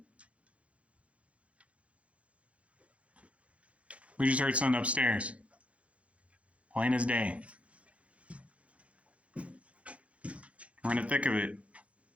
We just heard something upstairs. Plain as day. We're in the thick of it.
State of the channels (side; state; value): left; late; 0.063 ms